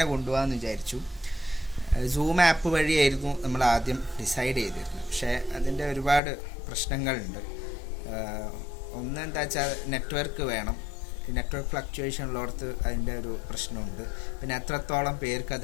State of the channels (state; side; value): drops out; right; at 6.2 s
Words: കൊണ്ടുപോകാമെന്ന് വിചാരിച്ചു. സൂം ആപ്പ് വഴിയായിരുന്നു നമ്മൾ ആദ്യം ഡിസൈഡ് ചെയ്തിരുന്നത്. പക്ഷേ അതിൻ്റെ ഒരുപാട് പ്രശ്നങ്ങളുണ്ട്. ഒന്ന് എന്താ വെച്ചാൽ നെറ്റ്വർക്ക് വേണം. നെറ്റ്വർക്ക് ഫ്ലക്ച്വേഷൻ ഉള്ളിടത്ത് അതിൻ്റെ ഒരു പ്രശ്നമുണ്ട്. പിന്നെ എത്രത്തോളം പേർക്ക്